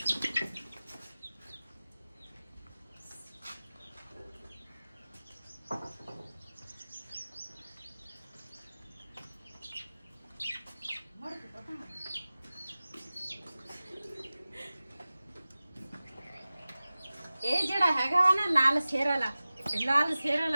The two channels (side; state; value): both; inverted; correlation -0.97